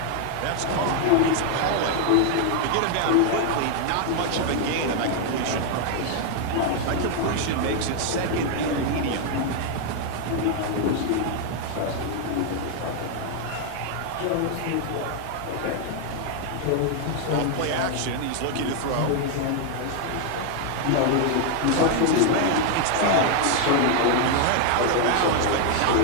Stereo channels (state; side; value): different; both; correlation 0.00